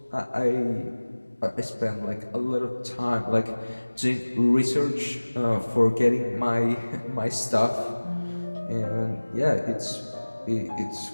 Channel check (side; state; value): both; inverted; correlation -1.00